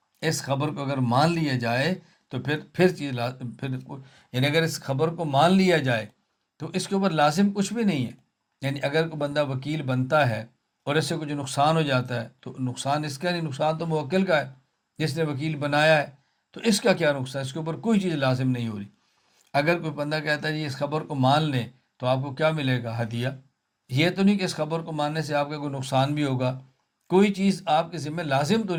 اس خبر کو اگر مان لیا جائے تو پھر یعنی اگر اس خبر کو مان لیا جائے تو اس کے اوپر لازم کچھ بھی نہیں ہے۔ یعنی اگر کوئی بندہ وکیل بنتا ہے اور اس سے کچھ نقصان ہو جاتا ہے تو نقصان اس کا نہیں، نقصان تو موکل کا ہے جس نے وکیل بنایا ہے، تو اس کا کیا نقصان، اس کے اوپر کوئی چیز لازم نہیں ہو رہی۔ اگر کوئی بندہ کہتا ہے جی اس خبر کو مان لیں تو آپ کو کیا ملے گا، ہدیہ، یہ تو نہیں کہ اس خبر کو ماننے سے آپ کا کوئی نقصان بھی ہوگا، کوئی چیز آپ کے ذمہ لازم تو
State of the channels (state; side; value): identical; both; correlation 1.00